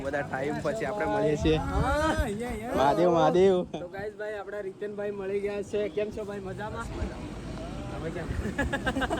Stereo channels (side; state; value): both; identical; correlation 1.00